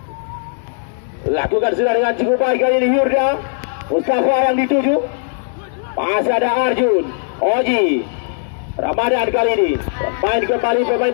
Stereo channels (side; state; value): right; silent; digital silence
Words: Lakukan sudah dengan cukup baik kali ini Yurda. Mustafa yang dituju. Masih ada Arjun. Oji. Ramadan kali ini. Main kembali pemain